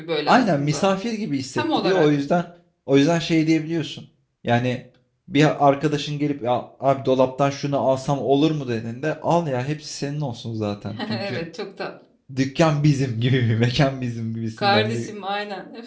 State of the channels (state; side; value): identical; both; correlation 1.00